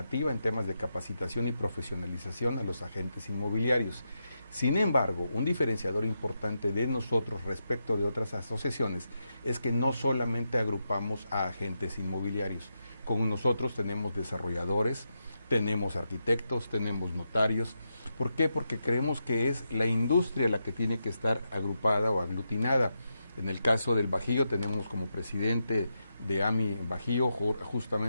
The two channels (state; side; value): inverted; both; correlation -0.86